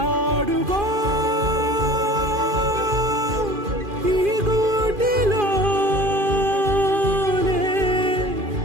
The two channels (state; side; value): late; left; 2.4 ms